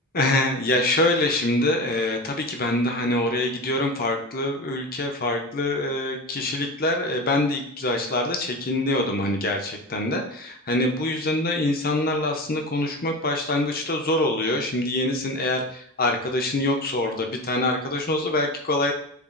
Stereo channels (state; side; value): normal; both; correlation 0.27